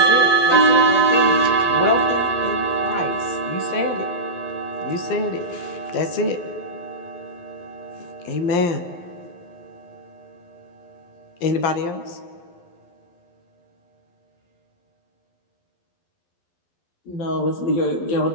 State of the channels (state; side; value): late; right; 12 ms